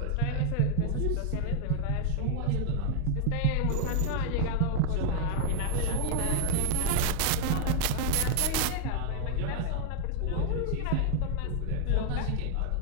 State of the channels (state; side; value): different; both; correlation 0.00